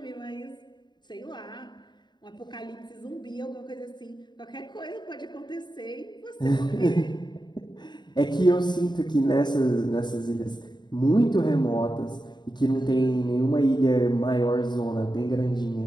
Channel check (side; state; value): right; late; 0.21 ms